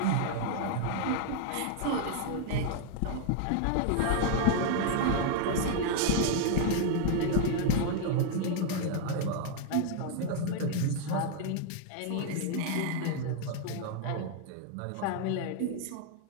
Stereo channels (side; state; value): both; different; correlation 0.00